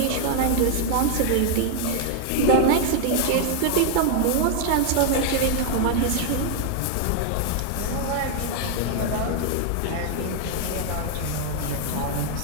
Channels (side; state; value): both; different; correlation 0.00